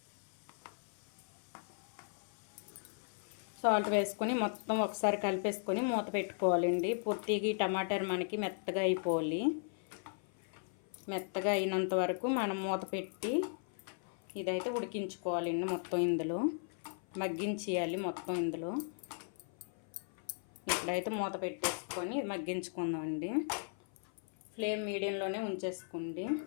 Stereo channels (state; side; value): silent; right; 53 dB below the other